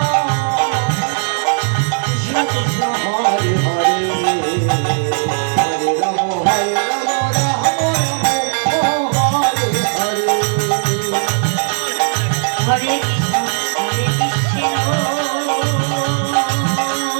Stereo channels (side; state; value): left; silent; digital silence